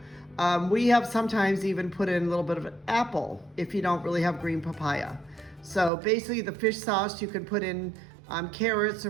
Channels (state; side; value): drops out; left; at 5.9 s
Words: We have sometimes even put in a little bit of an apple if you don't really have green papaya. So basically the fish sauce, you can put in carrots or